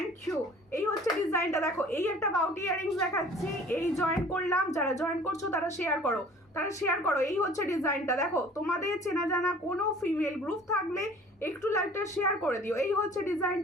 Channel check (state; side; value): normal; both; correlation 0.49